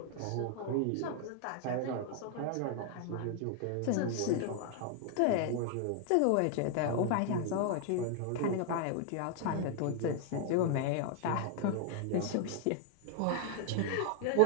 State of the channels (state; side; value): different; both; correlation 0.00